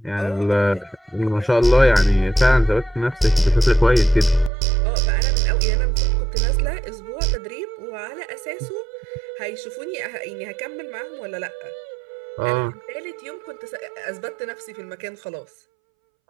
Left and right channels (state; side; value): drops out; left; at 4.5 s